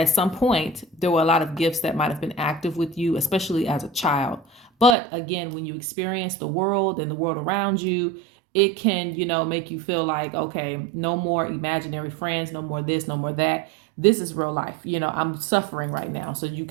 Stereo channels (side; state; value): left; drops out; at 5.0 s